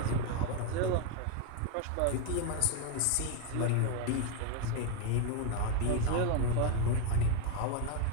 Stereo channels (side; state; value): both; different; correlation 0.01